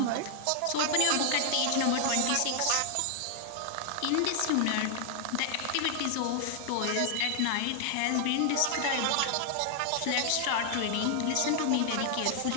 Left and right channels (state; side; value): different; both; correlation 0.00